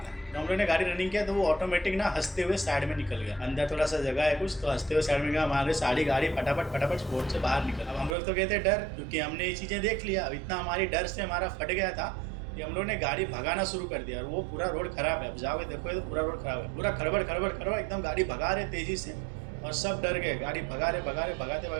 तो हम लोग ने गाड़ी रनिंग किया तो वो ऑटोमेटिक ना हंसते हुए साइड में निकल गया। अंदर थोड़ा सा जगह है कुछ, तो हंसते हुए साइड में गया। हमारे सारी गाड़ी फटाफट स्पोर्ट से बाहर निकल। अब हम लोग तो कहते डर, क्योंकि हमने ये चीज़ें देख लिया। अब इतना हमारी डर से हमारा फट गया था कि हम लोग ने गाड़ी भगाना शुरू कर दिया। और वो पूरा रोड खराब है, अब जाओगे देखोगे तो पूरा रोड खराब है, पूरा खड़बड़ एकदम गाड़ी भगा रहे तेजी से और सब डर गए। गाड़ी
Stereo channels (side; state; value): left; drops out; at 8.2 s